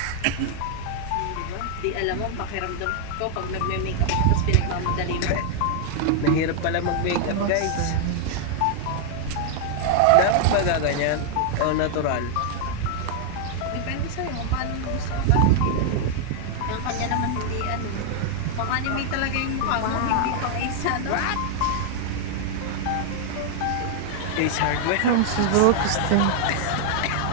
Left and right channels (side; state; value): both; different; correlation 0.00